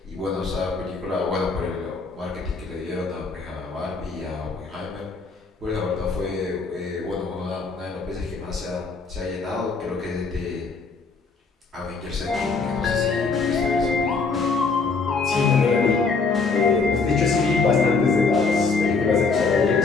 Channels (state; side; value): quieter; right; 4.4 dB